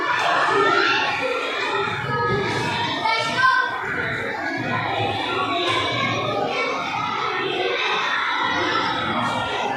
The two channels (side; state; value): both; identical; correlation 1.00